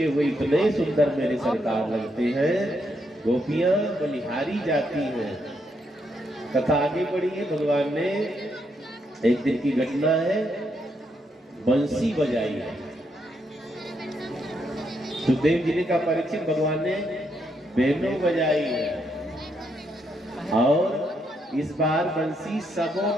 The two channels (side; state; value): both; normal; correlation 0.78